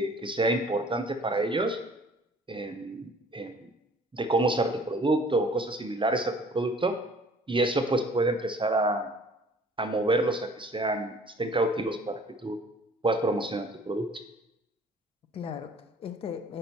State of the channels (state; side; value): normal; both; correlation 0.52